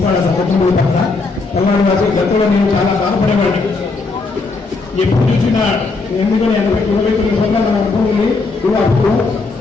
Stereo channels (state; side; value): quieter; right; 3.8 dB